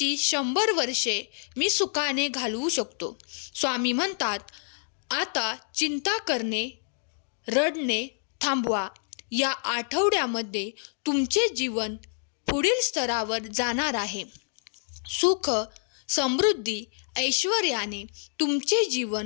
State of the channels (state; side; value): silent; right; digital silence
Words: 100 वर्षे मी सुखाने घालवू शकतो. स्वामी म्हणतात, आता चिंता करणे, रडणे थांबवा. या आठवड्यामध्ये तुमचे जीवन पुढील स्तरावर जाणार आहे. सुख, समृद्धी, ऐश्वर्याने तुमचे